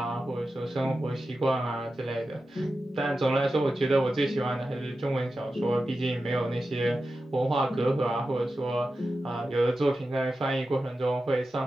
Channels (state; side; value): normal; both; correlation 0.92